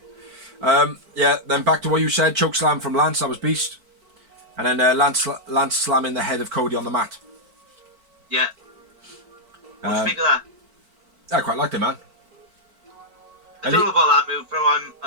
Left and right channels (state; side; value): late; left; 4.5 ms